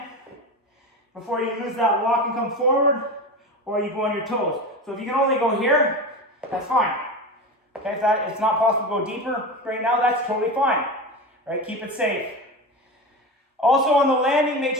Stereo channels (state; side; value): normal; both; correlation 0.25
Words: before you lose that lock and come forward, or you go on your toes. So if you can only go here, that's fine. Okay, if it's not possible to go deeper right now, that's totally fine. Right, keep it safe. Also on the landing, make